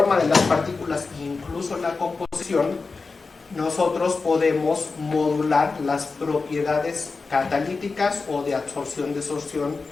de las partículas, incluso la composición, nosotros podemos modular las propiedades catalíticas o de absorción-desorción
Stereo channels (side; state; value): right; quieter; 4.2 dB